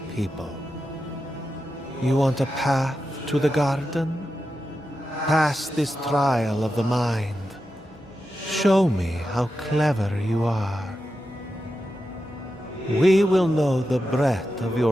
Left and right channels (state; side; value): normal; both; correlation 0.90